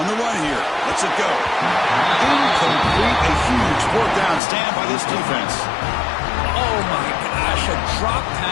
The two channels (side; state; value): right; drops out; at 4.4 s